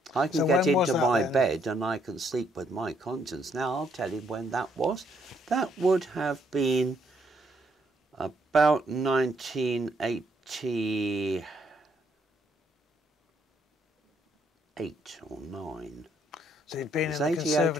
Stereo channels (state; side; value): normal; both; correlation 0.71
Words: I can get into my bed and I can sleep with my conscience. Now, I'll tell you when that was. That would have been about 1988 or 9. So you'd been in the